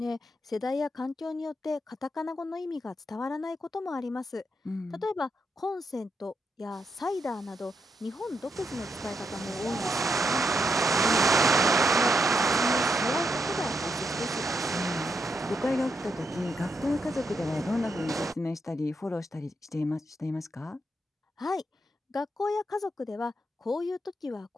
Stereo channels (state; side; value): normal; both; correlation 0.81